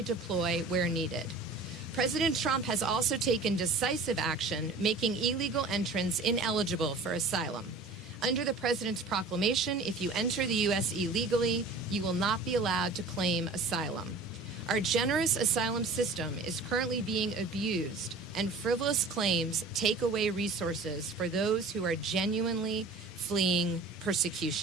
deploy where needed. President Trump has also taken decisive action, making illegal entrants ineligible for asylum. Under the President's proclamation, if you enter the U.S. illegally, you will not be allowed to claim asylum. Our generous asylum system is currently being abused, and frivolous claims take away resources for those who are genuinely fleeing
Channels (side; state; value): left; quieter; 3.5 dB